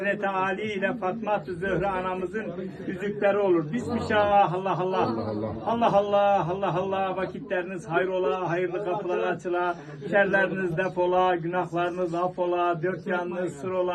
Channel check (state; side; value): identical; both; correlation 1.00